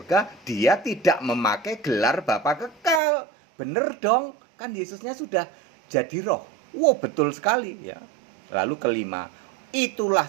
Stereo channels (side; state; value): left; drops out; at 3.0 s